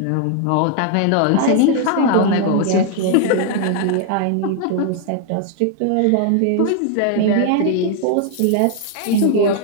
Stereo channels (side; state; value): both; different; correlation 0.00